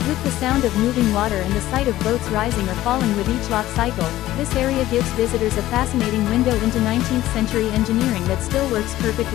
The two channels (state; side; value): quieter; right; 15.0 dB